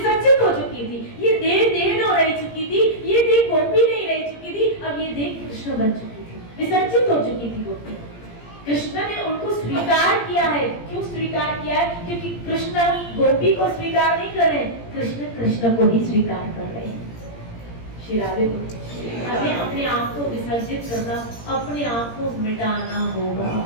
हो चुकी थी। ये देह न रह चुकी थी, ये देह गोपी नहीं रह चुकी थी, अब ये देह कृष्ण बन चुकी थी, विसर्जित हो चुकी थी गोपी। कृष्ण ने उनको स्वीकार किया है। क्यों स्वीकार किया है? क्योंकि कृष्ण गोपी को स्वीकार नहीं कर रहे, कृष्ण कृष्ण को ही स्वीकार कर रहे हैं। श्री राधे को हमें अपने आप को विसर्जित करना, अपने आप को मिटाना होगा।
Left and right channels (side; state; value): right; late; 17 ms